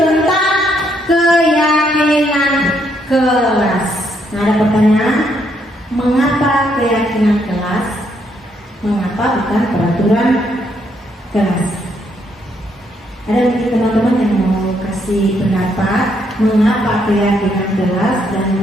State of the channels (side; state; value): both; normal; correlation 0.74